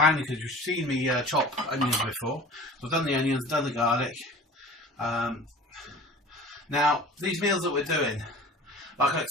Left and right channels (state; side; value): normal; both; correlation 0.41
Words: because you've seen me chop onions before. So I've done the onions, done the garlic. Now, these meals that we're doing, like I